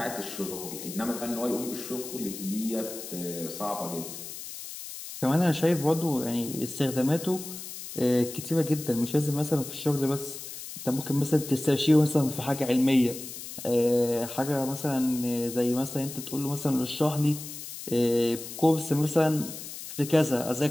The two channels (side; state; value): left; noise; hiss, 10 dB below the sound